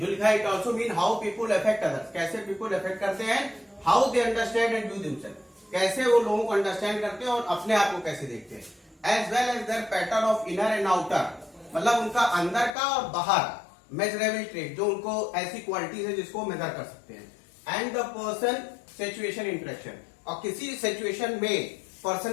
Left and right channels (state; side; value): drops out; right; at 12.8 s